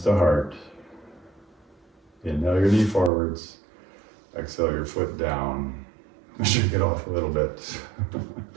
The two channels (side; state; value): left; drops out; at 3.1 s